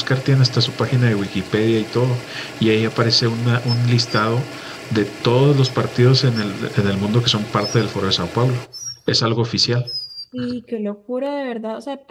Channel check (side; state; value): both; identical; correlation 1.00